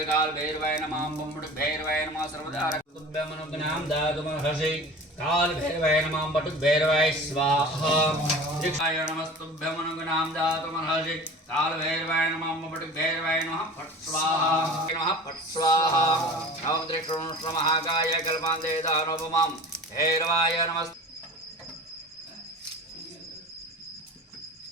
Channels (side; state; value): both; normal; correlation 0.38